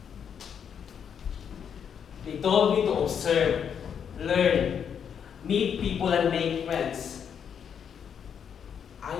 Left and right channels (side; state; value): right; quieter; 7.8 dB